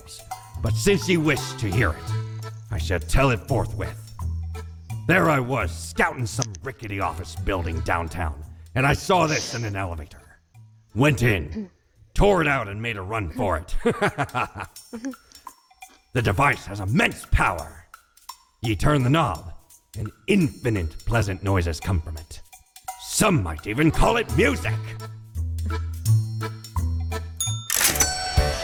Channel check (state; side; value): identical; both; correlation 1.00